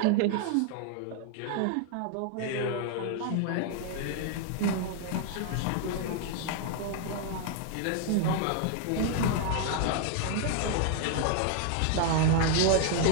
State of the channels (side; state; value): both; different; correlation 0.00